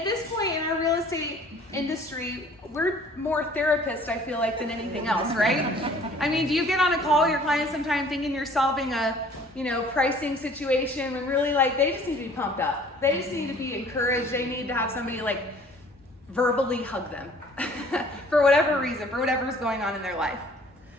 this point in our real estate industry, we're more therapists, I feel like, than anything else, right? I mean, do you get on a call with your clients sometime thinking you're solving a, pricing situation when really, like, they just need to be pumped up. They just need to be encouraged. They need to have somebody, like, verbally hug them for whatever reason, for whatever's going on in their life.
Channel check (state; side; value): normal; both; correlation 0.53